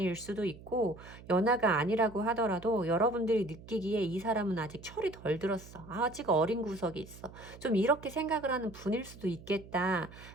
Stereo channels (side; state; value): right; noise; hum, 18 dB below the sound